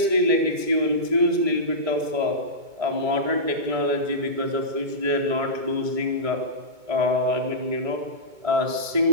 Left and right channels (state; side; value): late; left; 2.2 ms